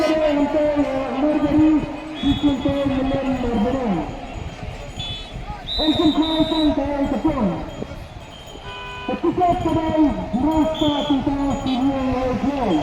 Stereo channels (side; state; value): both; identical; correlation 1.00